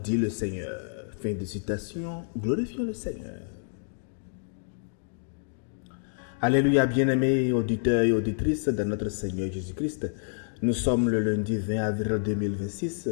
le Seigneur. Fin de citation, glorifions le Seigneur. Alléluia, bien-aimés auditeurs et auditrices de notre Seigneur Jésus-Christ. Nous sommes le lundi 20 avril 2026,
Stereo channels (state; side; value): silent; right; digital silence